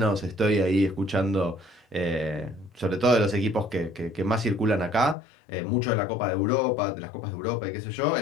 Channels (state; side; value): drops out; right; at 5.2 s